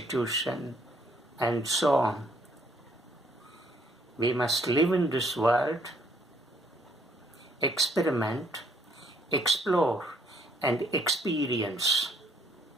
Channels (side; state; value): both; normal; correlation 0.67